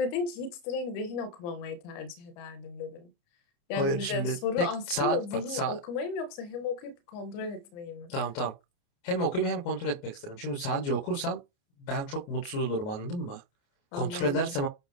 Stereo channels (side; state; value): right; late; 28 ms